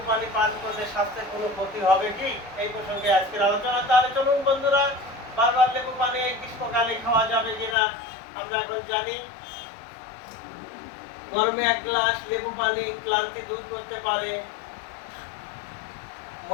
পানি পান করলে স্বাস্থ্যের কোনো ক্ষতি হবে কি? এই প্রসঙ্গে আজকের আলোচনা। তাহলে চলুন বন্ধুরা, বারবার লেবু পানি এই গ্রীষ্মকালে খাওয়া যাবে কিনা আমরা এখন জানি। গরমে 1 গ্লাস লেবু পানি ক্লান্তি দূর করতে পারে,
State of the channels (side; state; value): right; drops out; at 7.8 s